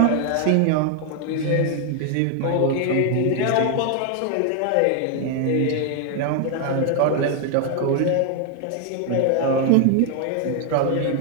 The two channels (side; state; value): both; different; correlation 0.00